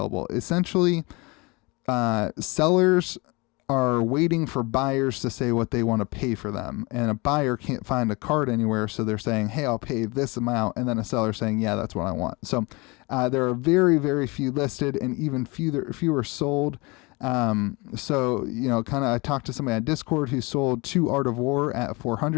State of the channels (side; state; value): right; quieter; 26.2 dB